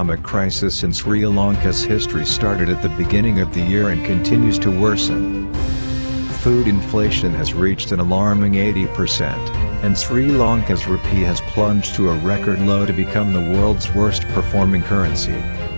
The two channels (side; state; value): both; inverted; correlation -1.00